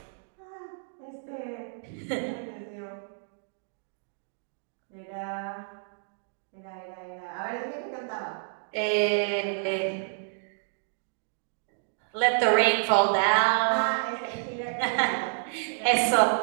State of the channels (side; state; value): left; silent; digital silence